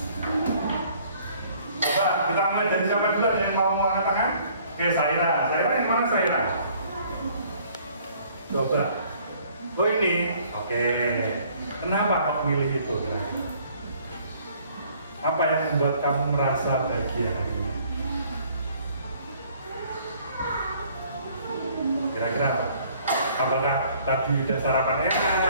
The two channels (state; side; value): inverted; both; correlation -0.58